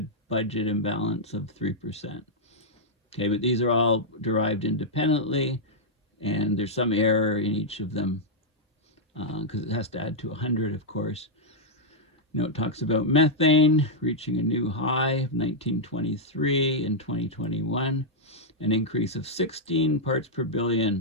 budget imbalance of 3%. Okay, but these are all derived independently, and there's some error in each of them because it has to add to 100, of course. It talks about methane reaching a new high of 1923 in 2021, an increase of 16 parts per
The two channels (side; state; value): both; normal; correlation -0.06